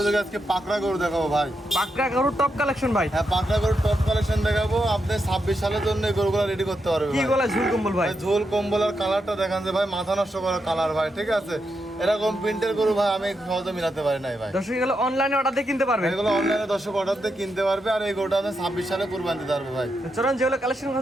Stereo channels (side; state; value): both; normal; correlation 0.84